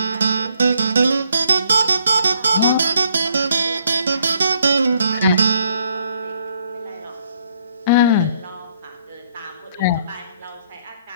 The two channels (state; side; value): inverted; both; correlation -0.69